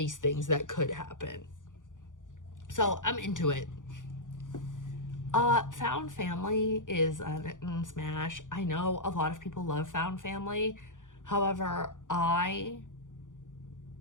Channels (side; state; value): right; late; 0.87 ms